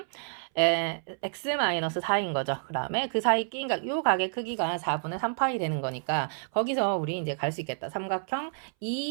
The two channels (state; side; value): silent; left; 58 dB below the other